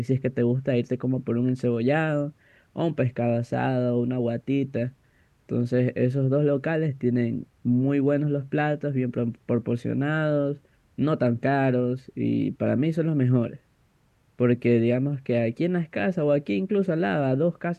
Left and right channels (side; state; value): both; identical; correlation 1.00